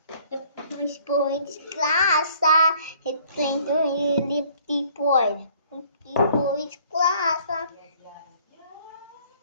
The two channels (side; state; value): both; inverted; correlation -0.58